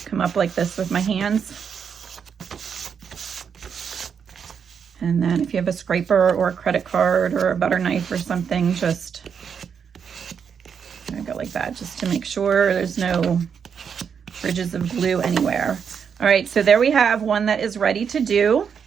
come up like this with my hands. And then if you have a scraper or a credit card or a butter knife or something, just go like that, just to make sure there's no ridges of glue anywhere. All right, so there we have one that is ready to do.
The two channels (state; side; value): quieter; left; 7.0 dB